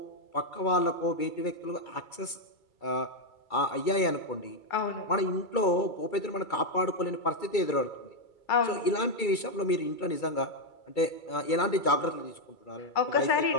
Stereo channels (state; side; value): late; right; 2.3 ms